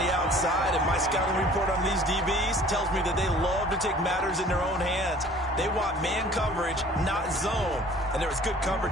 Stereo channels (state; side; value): normal; both; correlation 0.50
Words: outside, and my scouting report on these DBs tells me that they love to take matters in their own hands. They want man coverage, not zone. And there was good